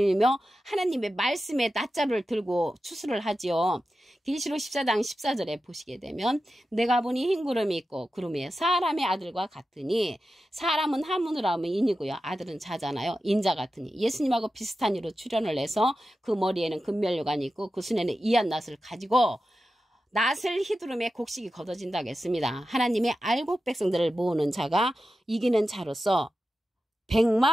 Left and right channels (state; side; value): normal; both; correlation 0.92